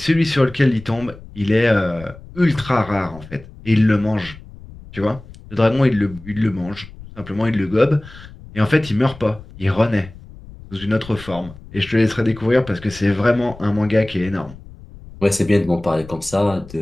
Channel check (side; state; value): left; noise; rumble, 18 dB below the sound